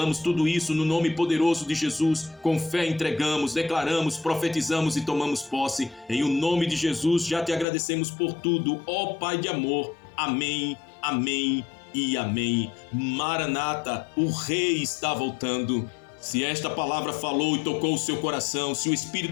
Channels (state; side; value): drops out; right; at 7.7 s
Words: tudo isso no nome poderoso de Jesus. Com fé entregamos, declaramos, profetizamos e tomamos posse. Em o nome de Jesus já Te agradecemos por tudo, ó Pai de amor. Amém, amém e amém. Maranata, o Rei está voltando. Se esta palavra falou e tocou o seu coração, se o